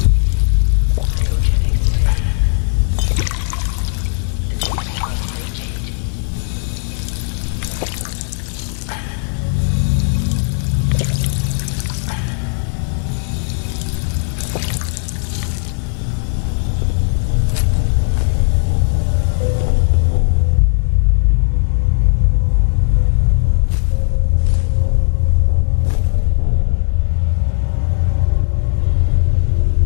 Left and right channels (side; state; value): right; silent; digital silence